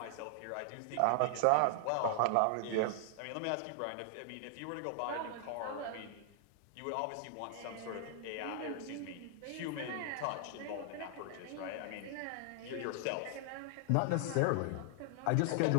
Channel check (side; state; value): both; different; correlation 0.00